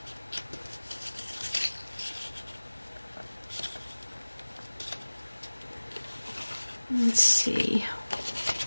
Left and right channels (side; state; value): both; inverted; correlation -1.00